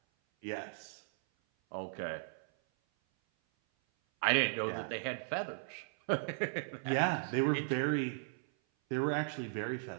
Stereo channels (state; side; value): silent; left; 53 dB below the other